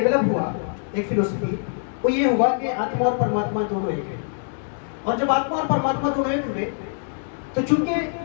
ہوا, ایک فلسفی, وہ یہ ہوا کہ آتما اور پرماتما دونوں ایک ہیں. اور جب آتما اور پرماتما دونوں ایک ہوئے تو چونکہ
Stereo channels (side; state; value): right; silent; digital silence